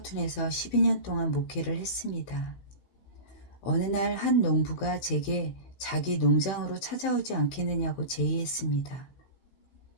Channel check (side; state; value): right; late; 15 ms